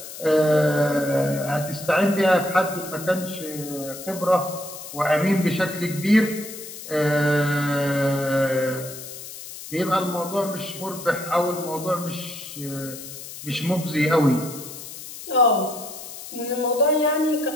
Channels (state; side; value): noise; left; hiss, 12 dB below the sound